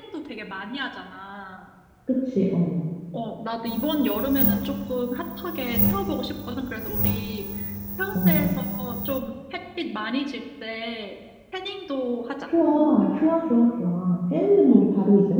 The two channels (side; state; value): both; identical; correlation 1.00